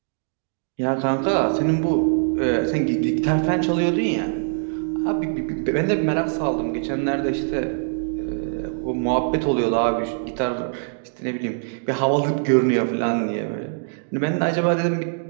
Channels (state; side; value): silent; left; digital silence